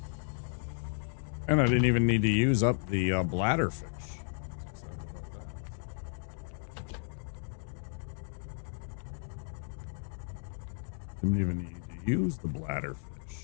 And I didn't even need to use up the bladderfish. Excited about that. Didn't even need to use the bladderfish.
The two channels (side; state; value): right; silent; 55 dB below the other